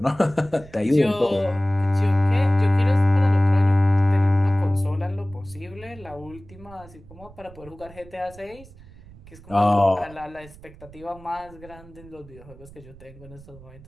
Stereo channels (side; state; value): right; noise; rumble, 21 dB below the sound